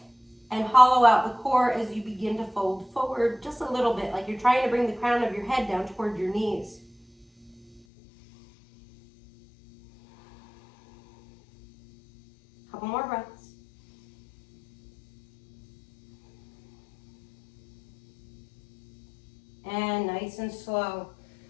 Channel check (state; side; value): drops out; right; at 7.8 s